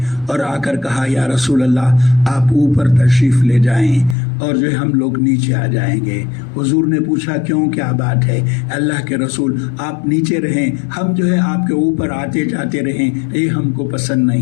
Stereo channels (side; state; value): right; drops out; at 4.2 s